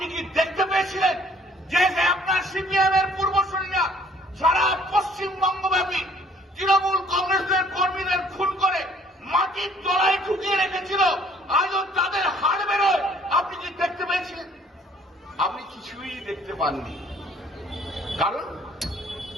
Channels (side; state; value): both; normal; correlation 0.58